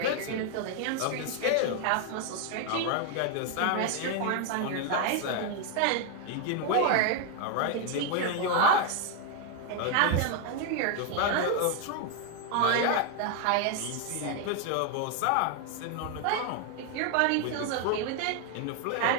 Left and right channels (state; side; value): different; both; correlation 0.01